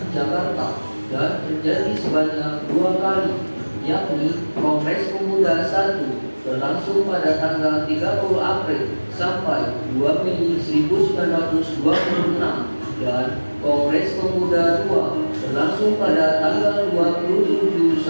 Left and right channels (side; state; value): both; inverted; correlation -1.00